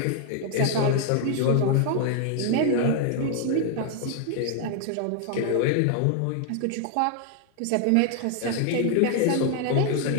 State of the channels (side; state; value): both; different; correlation 0.00